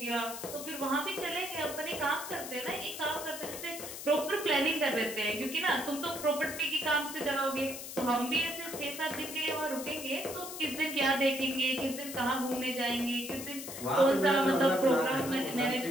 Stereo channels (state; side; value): noise; left; hiss, 9 dB below the sound